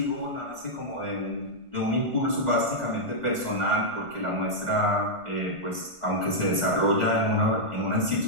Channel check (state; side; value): late; left; 1.5 ms